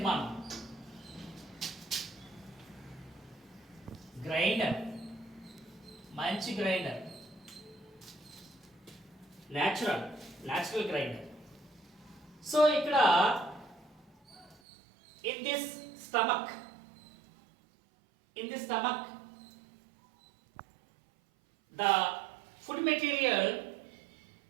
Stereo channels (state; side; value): drops out; left; at 14.6 s